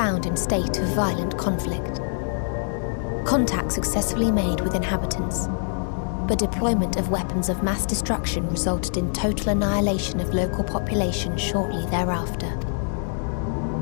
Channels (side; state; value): right; silent; digital silence